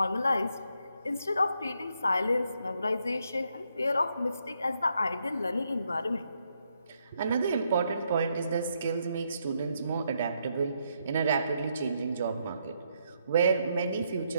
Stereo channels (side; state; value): both; inverted; correlation -0.77